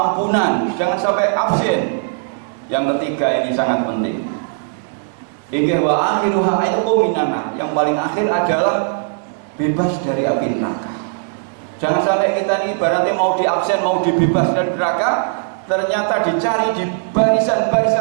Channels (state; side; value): silent; left; 66 dB below the other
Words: jangan sampai absen. Yang ketiga ini sangat penting. Hingga wa akhiruha itu minana, yang paling akhir adalah bebas dari api neraka. Jangan sampai kita ini ibaratnya mau diabsen, mau dibebas dari neraka, ternyata dicari di